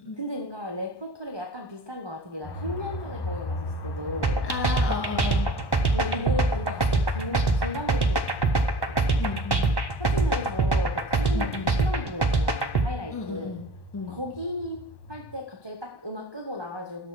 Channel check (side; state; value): right; late; 1.1 ms